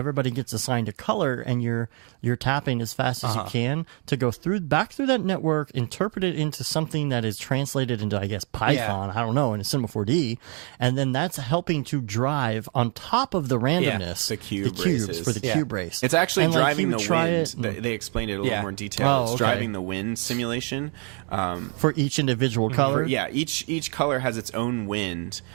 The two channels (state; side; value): quieter; left; 37.7 dB